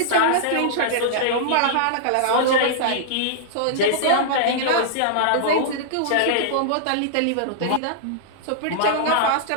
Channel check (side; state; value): both; different; correlation -0.02